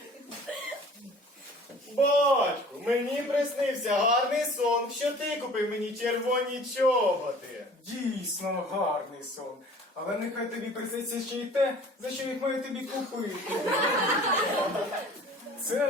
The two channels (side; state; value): both; normal; correlation 0.47